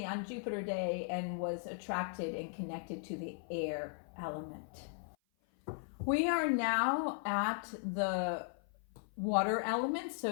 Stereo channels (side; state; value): right; silent; 53 dB below the other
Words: on Jupiter Day and was attracted and connected to the air element. We are now at the water element.